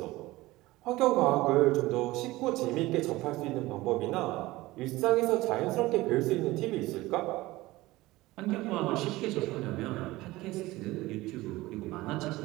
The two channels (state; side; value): quieter; left; 19.0 dB